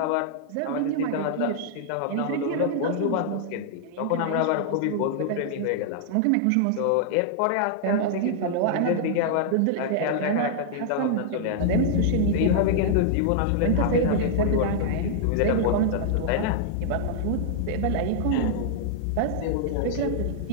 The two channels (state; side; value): different; both; correlation -0.01